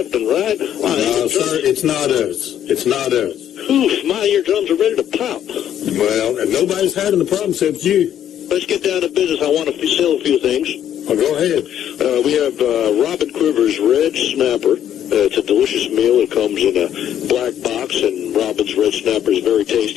and right. No, sir, it's not us. It's not us. Oof, my eardrums are ready to pop. Well, and nobody's having the problem except you. Let's get down to business. I want to sell a few things. Well, go ahead. We have Robin Quiver's Red Snapper. It's a delicious meal. It comes in a black box, and Robin's Red Snapper is very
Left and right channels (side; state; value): right; quieter; 10.3 dB